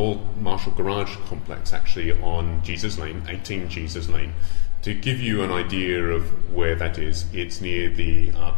Marshall Garage complex, actually on Jesus Lane, 18 Jesus Lane. To give you an idea of where that is, it's near the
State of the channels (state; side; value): silent; right; 66 dB below the other